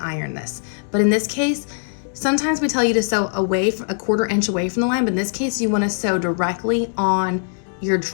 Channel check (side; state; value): right; silent; 65 dB below the other